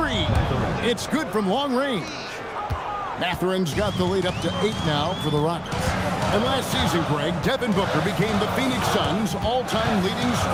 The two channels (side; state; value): both; identical; correlation 1.00